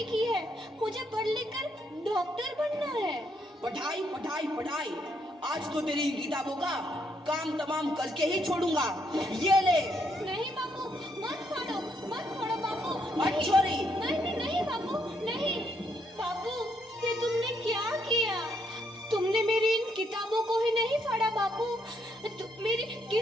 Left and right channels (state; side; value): normal; both; correlation 0.74